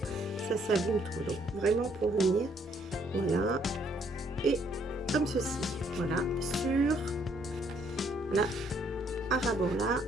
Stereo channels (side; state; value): both; normal; correlation 0.67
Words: ça s'abîme trop. Donc, vraiment pour venir, voilà. Et comme ceci. Voilà. Sur, voilà, à ras-bord là,